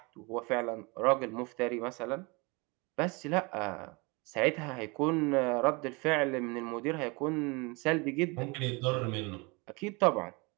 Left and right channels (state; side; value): quieter; left; 28.0 dB